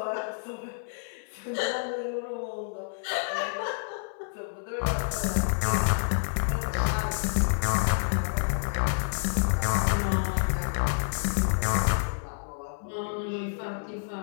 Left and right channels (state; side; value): silent; right; 57 dB below the other